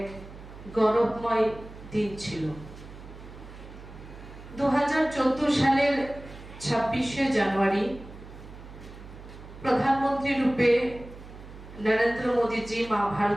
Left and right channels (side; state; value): right; noise; hum, 16 dB below the sound